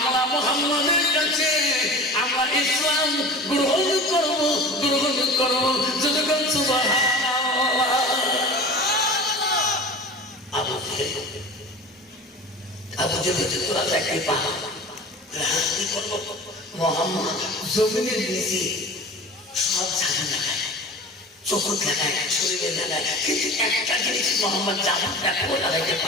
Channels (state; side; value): normal; both; correlation 0.36